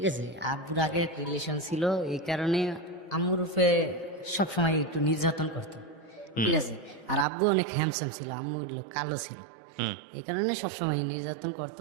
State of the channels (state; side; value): drops out; left; at 7.2 s